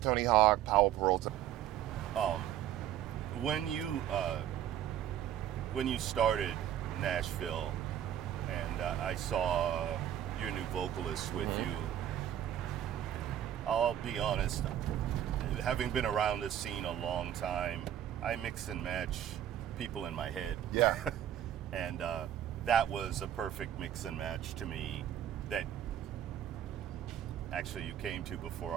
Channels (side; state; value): left; quieter; 10.9 dB